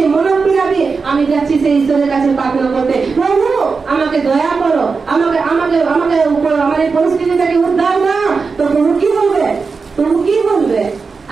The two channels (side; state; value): left; quieter; 4.8 dB